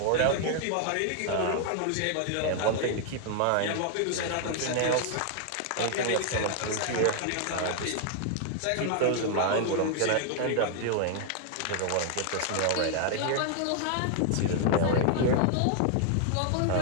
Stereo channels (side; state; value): both; different; correlation 0.00